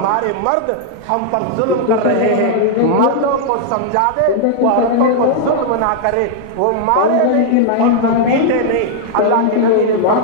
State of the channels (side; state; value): both; different; correlation -0.01